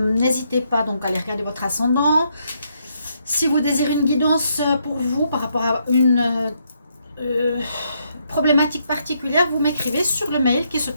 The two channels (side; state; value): both; inverted; correlation -0.75